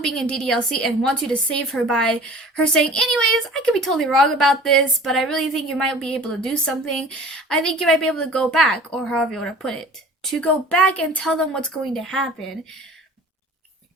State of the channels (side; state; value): both; normal; correlation 0.45